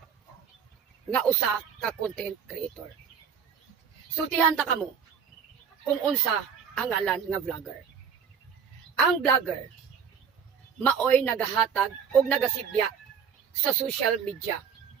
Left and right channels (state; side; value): quieter; left; 7.0 dB